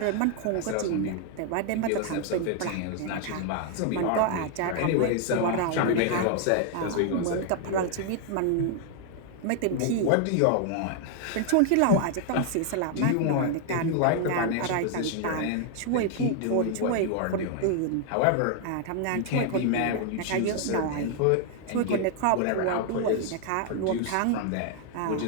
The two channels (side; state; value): both; different; correlation 0.00